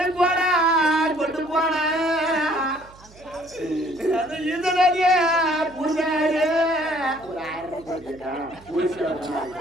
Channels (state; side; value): noise; right; hum, 24 dB below the sound